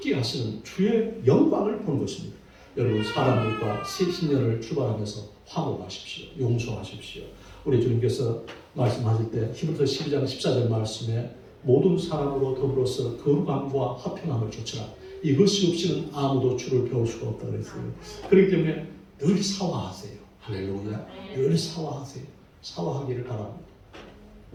하시는 주의 영광을 보는 것입니다. 여러분 사람들과 새 신년을 출발하면서 화목하십시오. 용서하십시오. 우리 주님께서 말씀하실 때 히브리서 12장 14절 말씀에 모든 사람으로 더불어서 거룩함과 화평함을 좇으라. 이것이 없이는 아무도 주를 배울 수가 없다고 그랬어요. 그렇기 때문에 늘 사화하세요. 할렐루야. 늘 사화하세요. 사화하기를 바랍니다.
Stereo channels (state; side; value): identical; both; correlation 1.00